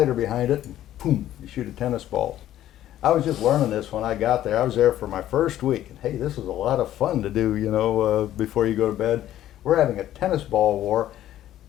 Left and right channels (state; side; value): quieter; right; 12.7 dB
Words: behind it, and boom, you shoot a tennis ball. I was just learning this when I got there. I was there for my first week, and hey, this was a lot of fun to do, you know, before you go to bed. We're having a tennis ball war,